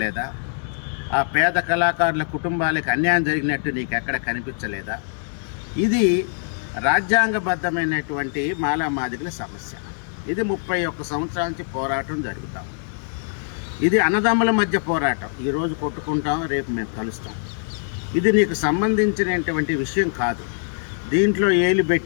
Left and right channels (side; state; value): right; silent; digital silence